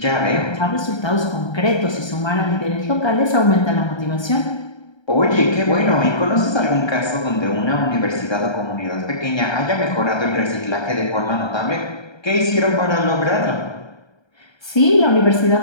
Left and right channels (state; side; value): late; right; 1.3 ms